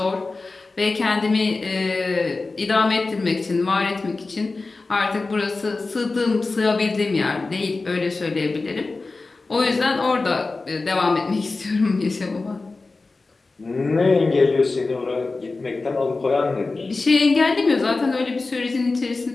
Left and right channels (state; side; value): quieter; right; 3.6 dB